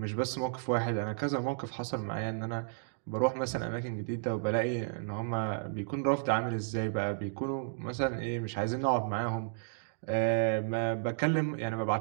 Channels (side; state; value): left; silent; digital silence